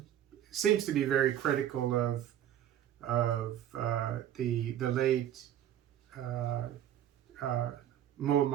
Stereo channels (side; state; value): left; quieter; 11.1 dB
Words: seems to be very critical of the late uh, uh,